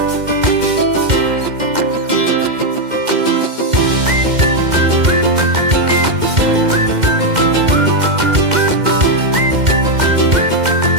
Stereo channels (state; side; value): late; left; 2.1 ms